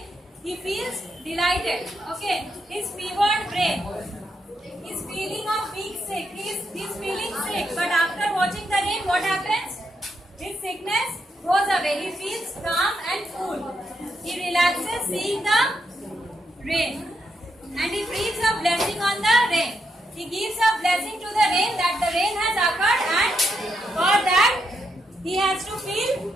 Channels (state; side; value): normal; both; correlation 0.81